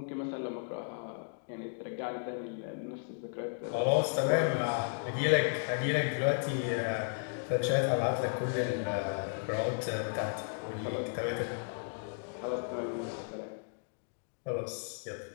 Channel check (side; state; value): right; silent; digital silence